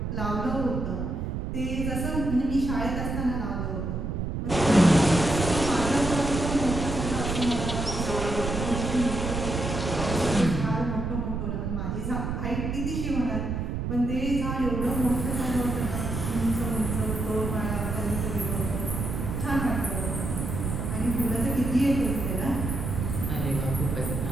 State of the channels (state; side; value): noise; right; rumble, 3 dB below the sound